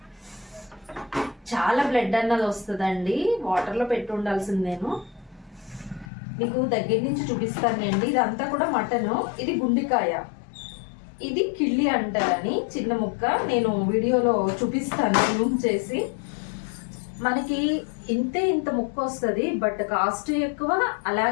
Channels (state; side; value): drops out; right; at 6.1 s